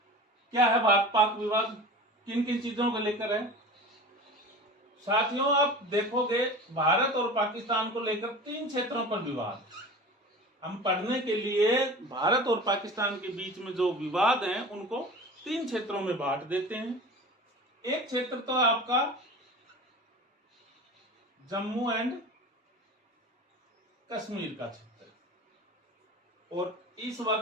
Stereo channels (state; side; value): normal; both; correlation 0.35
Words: क्या है भारत पाक विवाद? किन किन चीजों को लेकर है? साथियों, आप देखोगे भारत और पाकिस्तान को लेकर 3 क्षेत्रों पर विवाद। हम पढ़ने के लिए भारत और पाकिस्तान के बीच में जो विवाद हैं उनको 3 क्षेत्रों में बांट देते हैं। एक क्षेत्र तो आपका जम्मू एंड कश्मीर का क्षेत्र, और इस